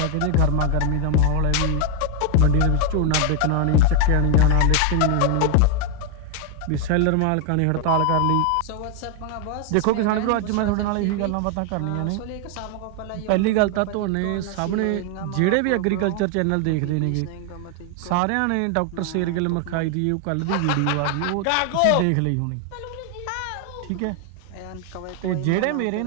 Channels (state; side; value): different; both; correlation 0.01